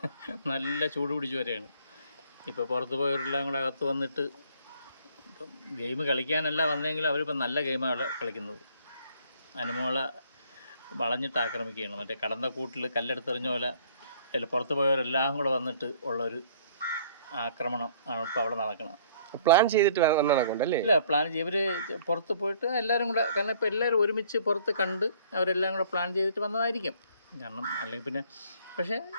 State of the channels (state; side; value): inverted; both; correlation -0.59